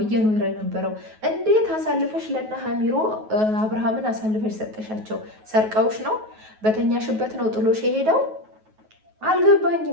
እየኖረ የነበረው። እንዴት አሳልፈሽ ለና ሀሚሮ አብርሃምን አሳልፈሽ ሰጠሻቸው? ሰርቀውሽ ነው? በተኛሽበት ነው ጥሎሽ የሄደው?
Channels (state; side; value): late; left; 9.3 ms